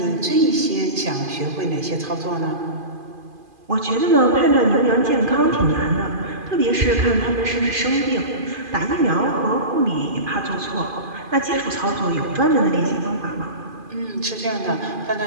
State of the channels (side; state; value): left; late; 2.5 ms